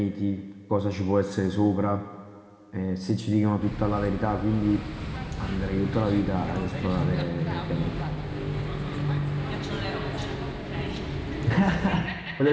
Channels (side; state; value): both; identical; correlation 1.00